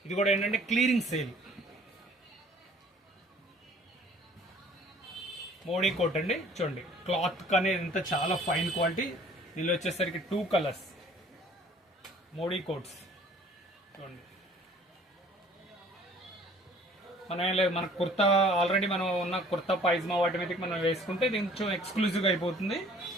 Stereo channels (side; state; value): both; normal; correlation 0.53